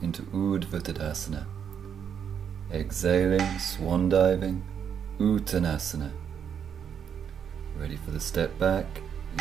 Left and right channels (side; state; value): left; quieter; 7.9 dB